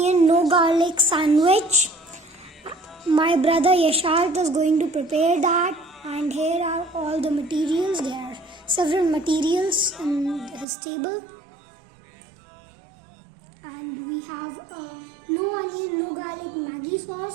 no garlic sandwich. My brother Yasharth is going to prepare that, and here are all the materials. There are several materials in his table. And we have a no onion, no garlic Maggi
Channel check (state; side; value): drops out; left; at 10.7 s